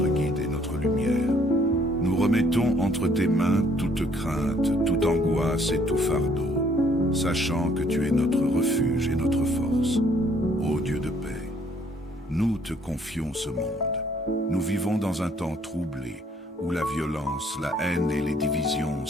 guide et notre lumière. Nous remettons entre tes mains toute crainte, toute angoisse et tout fardeau, sachant que tu es notre refuge et notre force. Ô Dieu de paix, nous te confions ce monde. Nous vivons dans un temps troublé, où la violence, la haine et les divisions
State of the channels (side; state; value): both; normal; correlation 0.63